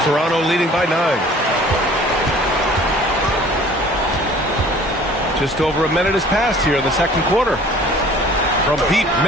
Toronto leading by 9. Just over a minute has passed here in the second quarter. From deep,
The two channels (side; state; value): both; normal; correlation 0.50